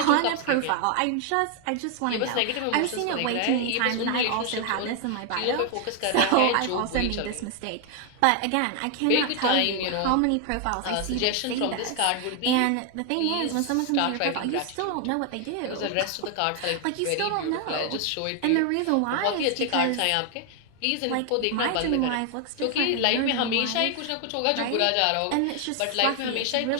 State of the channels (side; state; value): both; different; correlation 0.00